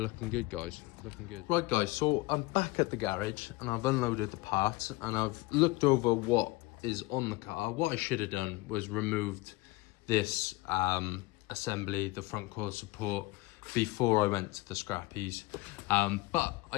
good, guys, looking good. Right guys, so I'm back at the garage and I've unloaded the parts and I've looked over what is on the car. What I should have done was removed this assembly, the front core support, before I went to the scrappies, but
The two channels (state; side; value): quieter; right; 20.8 dB